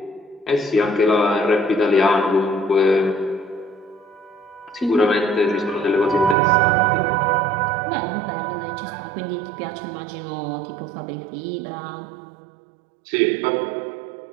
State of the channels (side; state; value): left; drops out; at 6.4 s